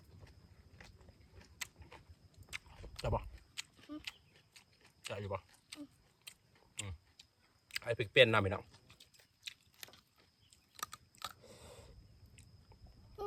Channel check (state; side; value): identical; both; correlation 1.00